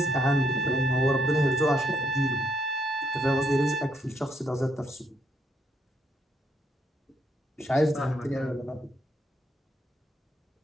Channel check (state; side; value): normal; both; correlation 0.73